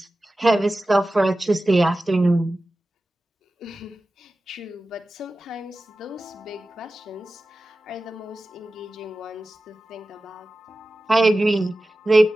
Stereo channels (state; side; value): normal; both; correlation 0.95